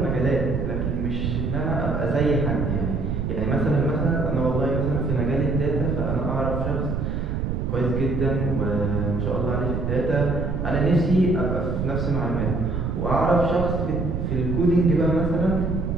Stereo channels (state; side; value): noise; right; rumble, 2 dB below the sound